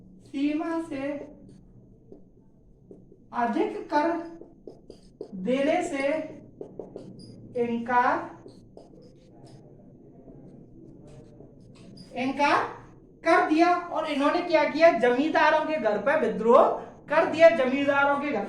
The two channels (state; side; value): identical; both; correlation 1.00